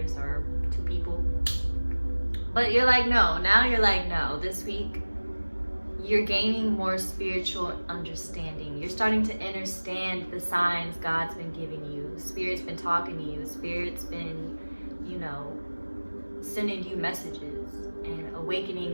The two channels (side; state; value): both; inverted; correlation -1.00